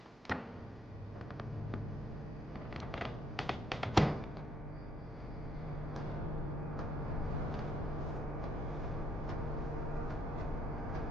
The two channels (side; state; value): both; normal; correlation 0.69